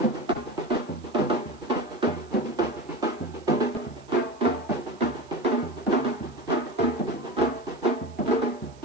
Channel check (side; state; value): right; noise; hiss, 27 dB below the sound